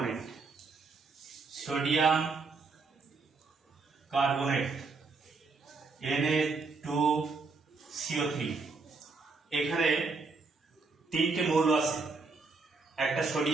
Sodium carbonate Na2CO3, এখানে 3টে মৌল আছে, একটা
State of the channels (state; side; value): quieter; left; 4.2 dB